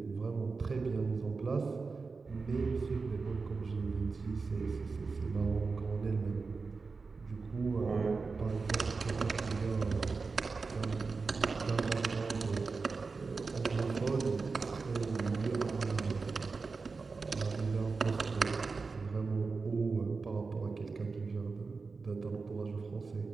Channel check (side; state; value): left; quieter; 4.4 dB